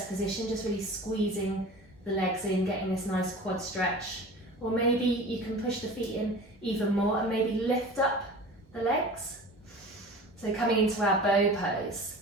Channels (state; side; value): normal; both; correlation 0.38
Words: position, just really squeezing the legs in, getting this nice quad stretch. Or maybe you can push the feet in even more and maybe lift up the legs. So coming into our bow pose,